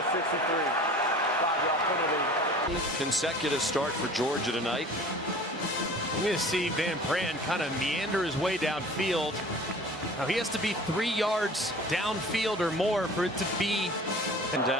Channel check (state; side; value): normal; both; correlation 0.43